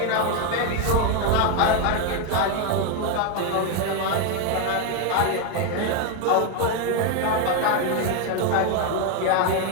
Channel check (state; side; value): different; both; correlation 0.01